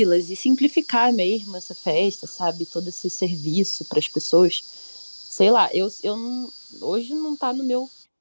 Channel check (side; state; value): both; inverted; correlation -1.00